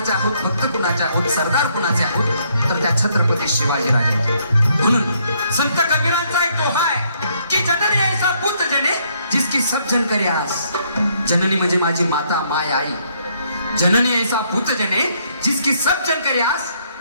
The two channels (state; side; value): inverted; both; correlation -0.70